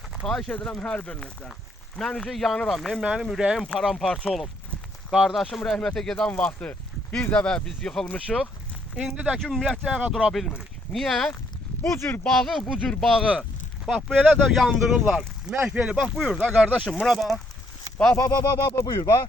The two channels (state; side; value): normal; both; correlation 0.70